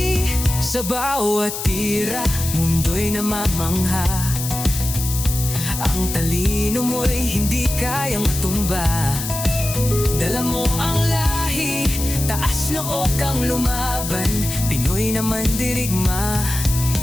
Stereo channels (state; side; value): noise; left; hiss, 6 dB below the sound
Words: Sa bawat tira, mundo'y namamangha. Ang talino mo'y hindi kayang matumba. Dala mo ang lahi, taas noo kang lumaban. Pinoy naman dirigma,